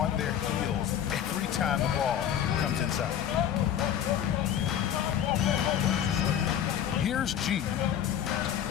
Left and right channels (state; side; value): quieter; right; 9.8 dB